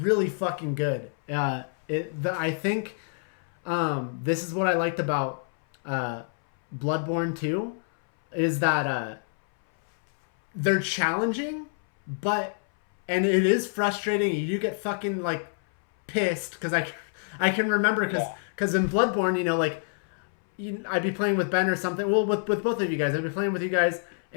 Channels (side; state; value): right; silent; 60 dB below the other